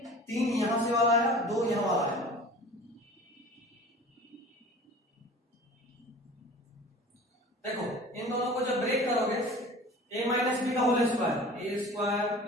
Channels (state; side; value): normal; both; correlation 0.41